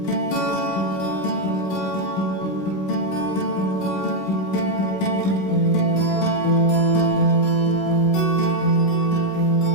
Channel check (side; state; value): right; late; 16 ms